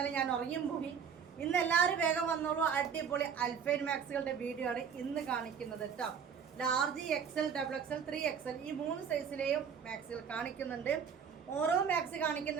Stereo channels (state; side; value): quieter; left; 7.1 dB